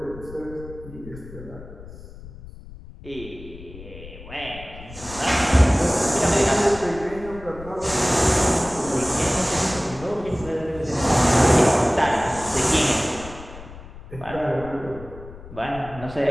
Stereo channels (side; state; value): left; noise; rumble, 16 dB below the sound